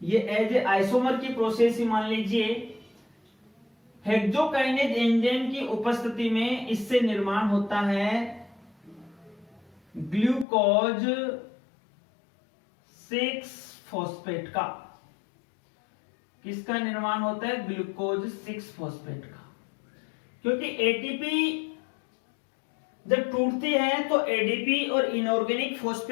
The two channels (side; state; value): right; drops out; at 10.5 s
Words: ये एज ए आइसोमर की प्रोसेस ही मान लीजिए, हेक्सोकाइनेज एंजाइम की उपस्थिति में इससे निर्माण होता है ग्लूकोज 6 फॉस्फेट का। किसका निर्माण होता है, ग्लूकोज 6 फॉस्फेट का, क्योंकि एटीपी जब टूटती है तो एडीपी और इनऑर्गेनिक